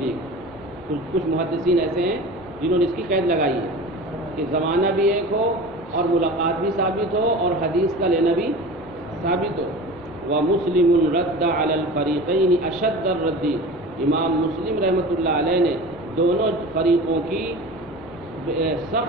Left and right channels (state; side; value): normal; both; correlation 0.35